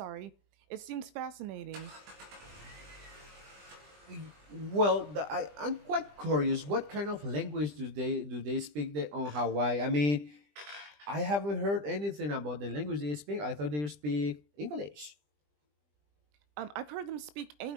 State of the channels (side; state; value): left; late; 20 ms